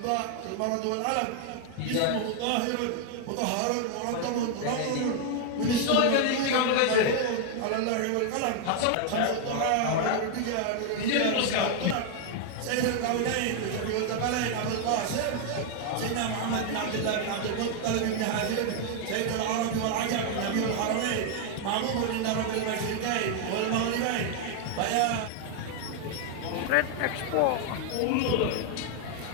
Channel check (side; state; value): both; different; correlation 0.00